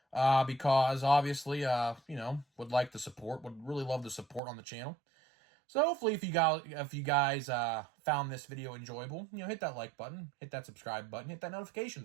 Because obviously, would like the support. Would really love the support on the channel. So hopefully if you guys found this video enjoyable, hit that like button, hit that subscribe button, hit that notification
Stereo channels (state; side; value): drops out; left; at 4.4 s